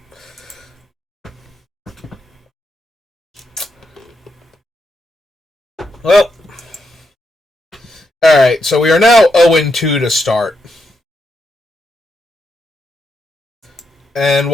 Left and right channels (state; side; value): normal; both; correlation 0.82